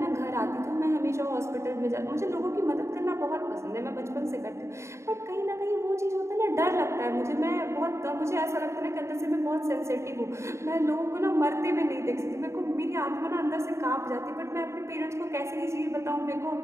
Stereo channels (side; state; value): left; late; 0.14 ms